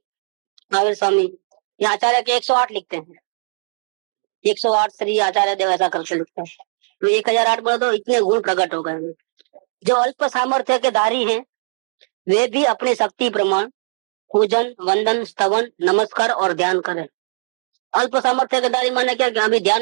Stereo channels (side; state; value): left; silent; digital silence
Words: महावीर स्वामी ये आचार्य के 108 लिखते हैं, 108 श्री आचार्य देव ऐसा करके लिखते हैं। तो 1008 बोले तो इतने गुण प्रकट हो गए। जो अल्प सामर्थ्य के धारी हैं वे भी अपनी शक्ति प्रमाण पूजन, वंदन, स्तवन, नमस्कार और ध्यान करें। अल्प सामर्थ्य के धारी माने क्या कि अभी